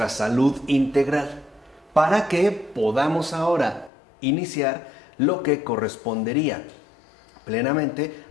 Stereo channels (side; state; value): right; drops out; at 3.9 s